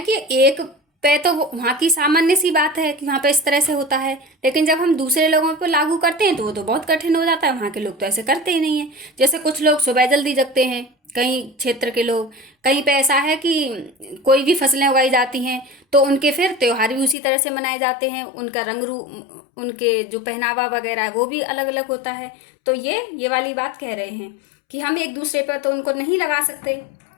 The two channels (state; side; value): drops out; right; at 17.2 s